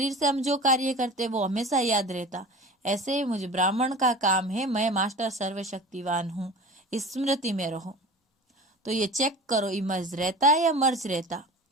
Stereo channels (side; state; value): both; normal; correlation 0.36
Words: से हम जो कार्य करते वो हमेशा याद रहता। ऐसे मुझे ब्राह्मण का काम है, मैं मास्टर सर्वशक्तिवान हूँ, इस स्मृति में रहो। तो ये चेक करो इमर्ज रहता है या मर्ज रहता।